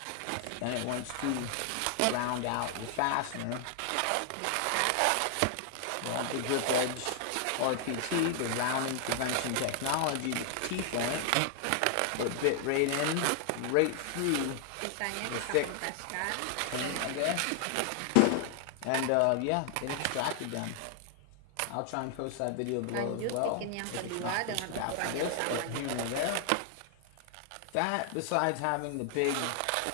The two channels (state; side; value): different; both; correlation 0.00